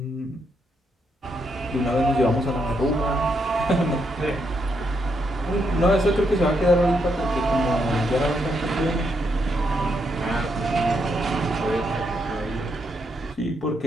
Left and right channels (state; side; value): normal; both; correlation 0.79